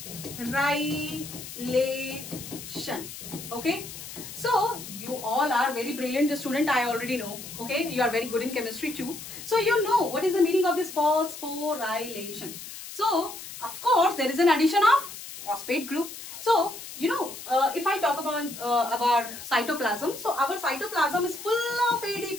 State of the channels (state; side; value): noise; left; hiss, 12 dB below the sound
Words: okay, so you all are very brilliant student, I already know. Okay, you are very good in chemistry too, so you know what is the meaning of this phosphorylation. So of course there is an addition of phosphate group. So you know, if I talk about cytoplasm, so our cytoplasm is full of